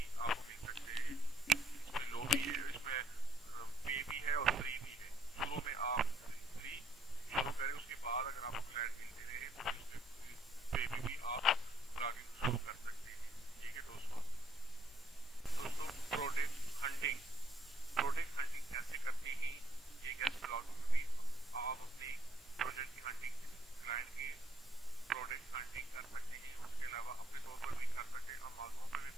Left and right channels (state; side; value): normal; both; correlation 0.70